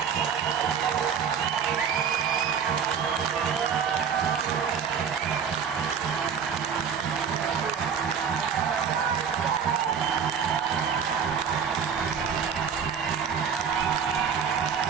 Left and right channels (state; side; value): quieter; left; 7.0 dB